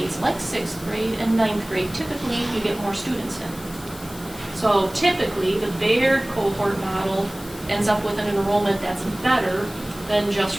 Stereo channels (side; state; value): left; noise; hiss, 18 dB below the sound